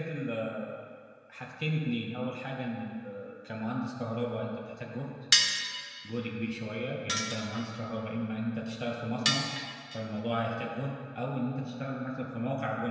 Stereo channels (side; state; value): both; identical; correlation 1.00